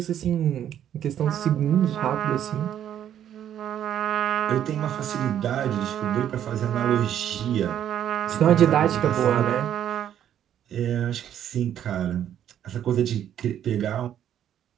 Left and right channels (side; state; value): left; quieter; 10.3 dB